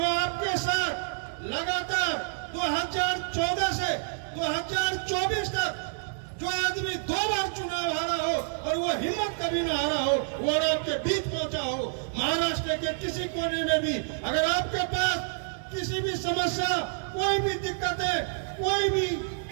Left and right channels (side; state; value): left; silent; digital silence